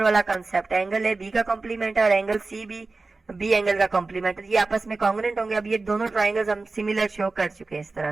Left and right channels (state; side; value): quieter; left; 3.6 dB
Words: वाला कंसेप्ट है। एंगल ए बी का कॉम्प्लीमेंट है और एंगल सी भी बी एंगल का कॉम्प्लीमेंट है, ये आपस में कॉन्ग्रुएंट होंगे। अब ये दोनों ट्राइंगल्स हम सिमिलर शो कर चुके हैं इस तरह